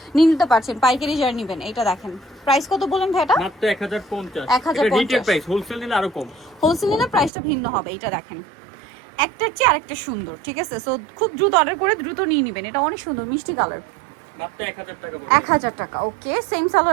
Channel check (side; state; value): left; drops out; at 7.3 s